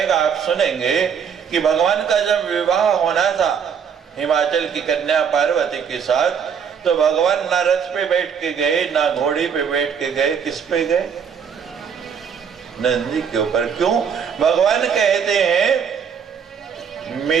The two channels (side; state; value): left; quieter; 7.1 dB